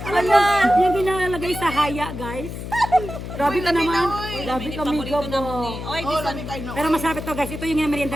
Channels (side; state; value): left; noise; hum, 8 dB below the sound